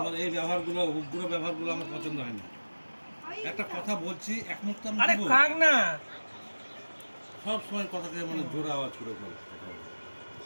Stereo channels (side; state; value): both; inverted; correlation -1.00